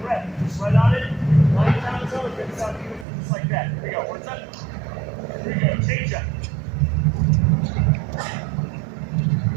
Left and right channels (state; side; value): drops out; left; at 3.1 s